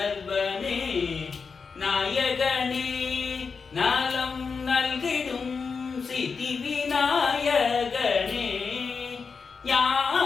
நாயகனே நலம் நல்கிடும் சித்தி விநாயகனே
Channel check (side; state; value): right; quieter; 5.2 dB